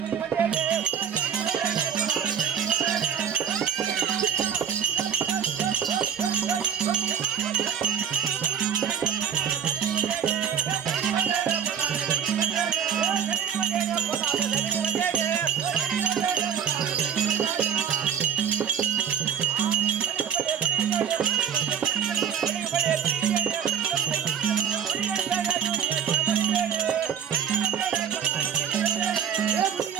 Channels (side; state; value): left; quieter; 8.2 dB